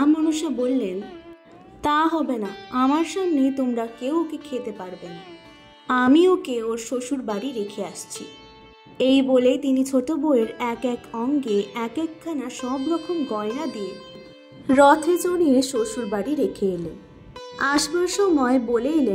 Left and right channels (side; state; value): both; identical; correlation 1.00